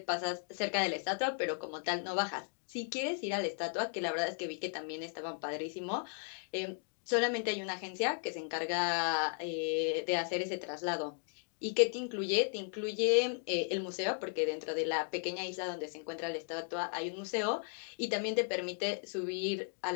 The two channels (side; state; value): right; silent; 54 dB below the other